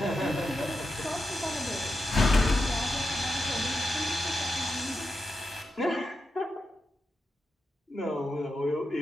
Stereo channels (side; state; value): both; normal; correlation 0.88